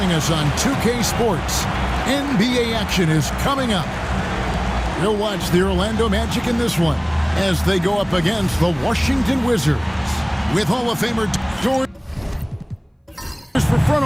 us on 2K Sports. NBA action is coming up. You'll watch the Orlando Magic in this one as they go up against the Washington Wizards. With Hall of Famer George for front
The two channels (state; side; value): identical; both; correlation 1.00